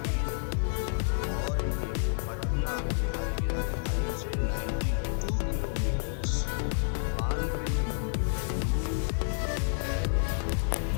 और ये पटना बिहार की राजधानी से 92 किलोमीटर्स 92 किलोमीटर दूर है।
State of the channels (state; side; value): silent; right; digital silence